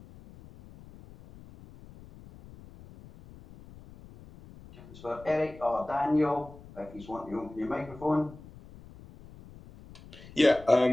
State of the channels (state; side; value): noise; left; rumble, 19 dB below the sound